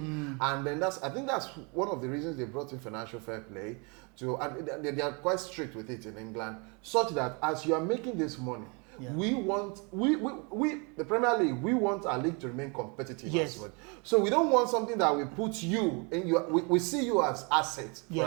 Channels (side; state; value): left; quieter; 32.5 dB